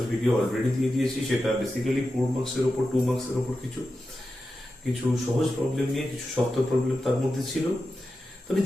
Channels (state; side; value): normal; both; correlation 0.91